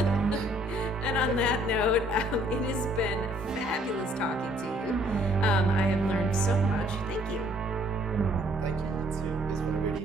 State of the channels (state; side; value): normal; both; correlation 0.63